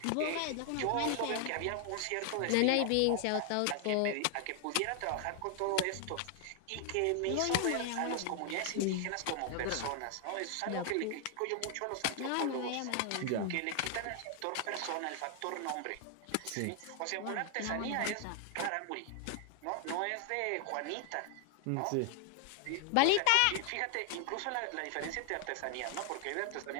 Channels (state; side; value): different; both; correlation 0.00